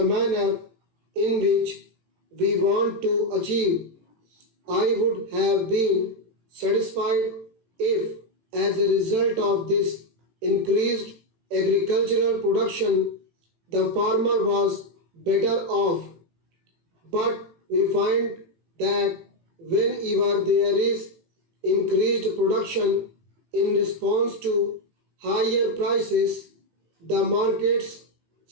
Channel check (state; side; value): late; left; 18 ms